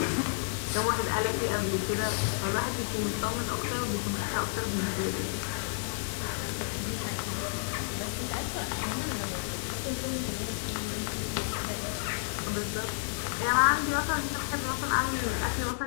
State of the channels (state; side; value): silent; right; digital silence